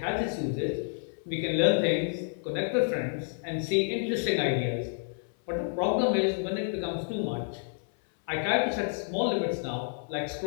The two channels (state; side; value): silent; right; 57 dB below the other